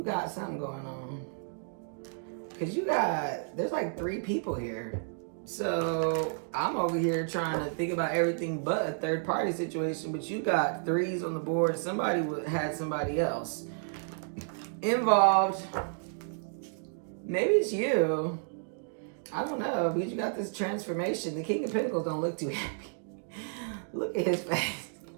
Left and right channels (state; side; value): silent; left; digital silence